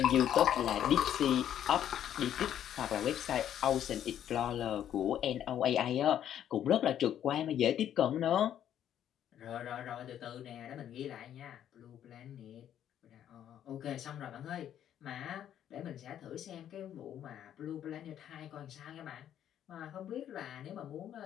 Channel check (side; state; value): right; quieter; 10.4 dB